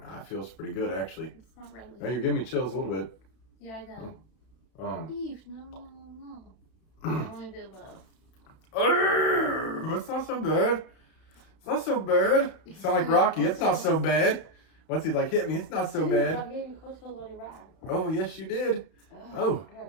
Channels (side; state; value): right; late; 32 ms